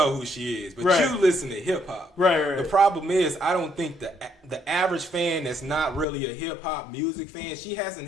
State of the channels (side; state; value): right; drops out; at 6.1 s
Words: who she is, but Right. you listen to hip hop. Right. The problem is, I don't think the average fan that's not really a hip hop music fan, she